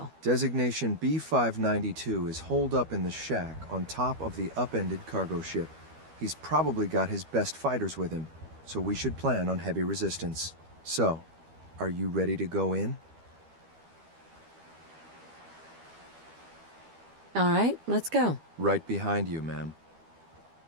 Designation B592 is holed up in the shack on top of the upended cargo ship. He's probably got his best fighters with him, so we should plan on heavy resistance. So, are you ready to go in? All right, let's go. Right behind you, ma'am.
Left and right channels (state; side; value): late; left; 12 ms